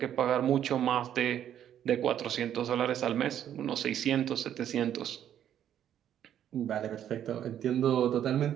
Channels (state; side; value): quieter; left; 10.3 dB